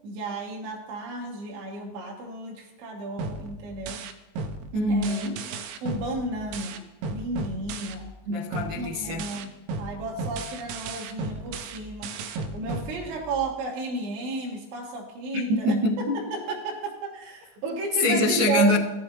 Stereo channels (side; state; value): left; late; 19 ms